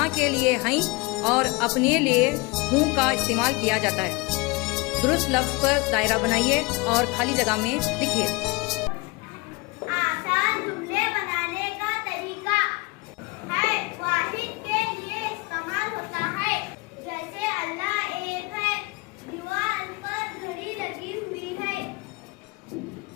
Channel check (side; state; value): right; quieter; 26.0 dB